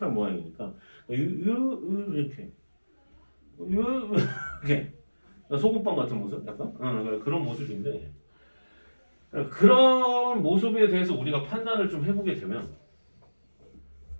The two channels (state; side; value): inverted; both; correlation -1.00